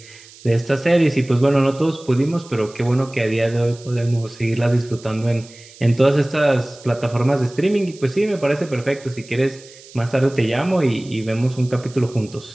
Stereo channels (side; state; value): right; noise; hiss, 22 dB below the sound